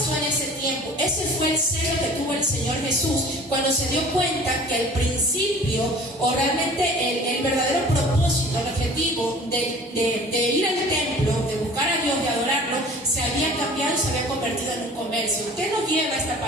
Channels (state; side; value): normal; both; correlation 0.46